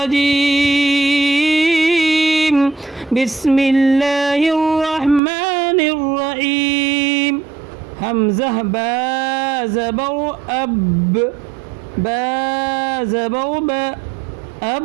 बिस्मिल्लाहिर रहमानिर रहीम। हमज़ा बा ज़बर अब, बा ज़बर ब,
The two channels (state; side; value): drops out; left; at 5.2 s